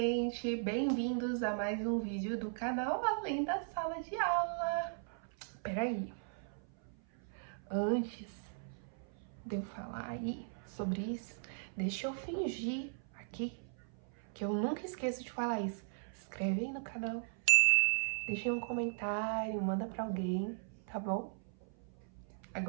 Bem-vindos a mais um vídeo do canal Além da Sala de Aula. Peraí, antes de eu falar aí sobre isso, deixa eu fingir aqui que eu nunca esqueço de falar isso. Se inscreve aí no canal, deixa aí um comentário, manda pra alguém, tá bom?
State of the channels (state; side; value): silent; left; 53 dB below the other